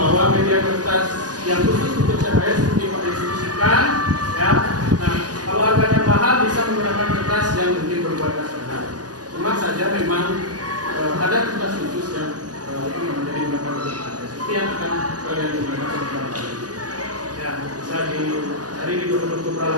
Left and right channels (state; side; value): late; left; 0.68 ms